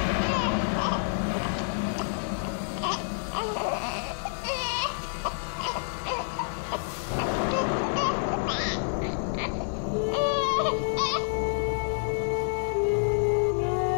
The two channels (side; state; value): right; silent; 58 dB below the other